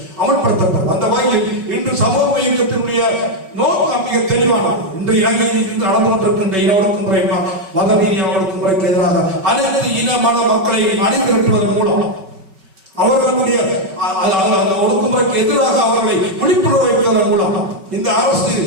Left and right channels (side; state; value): left; late; 5.2 ms